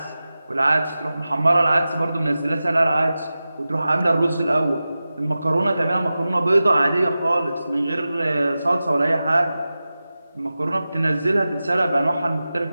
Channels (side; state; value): both; inverted; correlation -0.94